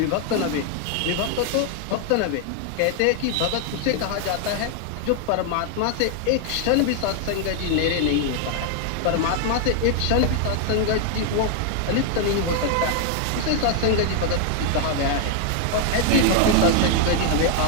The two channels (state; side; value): different; both; correlation 0.00